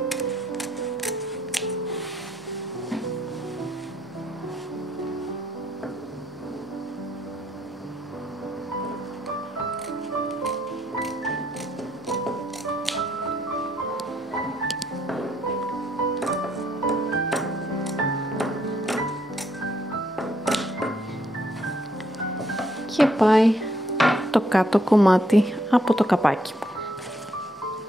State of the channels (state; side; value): normal; both; correlation 0.72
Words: Και πάει το κάτω κομμάτι από το καπάκι μου.